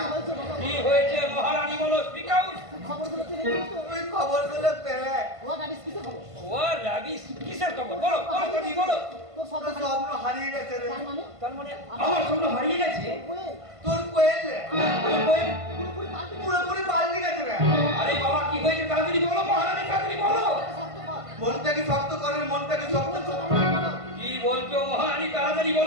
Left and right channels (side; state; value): left; late; 1.5 ms